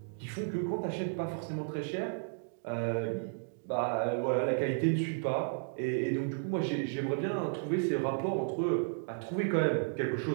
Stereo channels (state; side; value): silent; left; digital silence